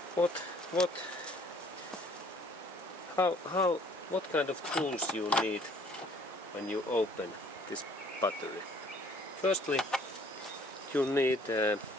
what kind of tools you need when you open this battery? Firstly, you need a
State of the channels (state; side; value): normal; both; correlation 0.57